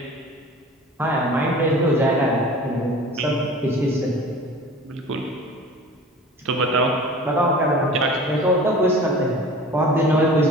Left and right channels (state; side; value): normal; both; correlation 0.41